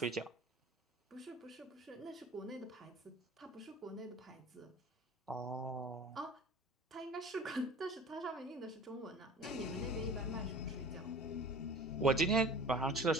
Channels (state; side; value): normal; both; correlation 0.41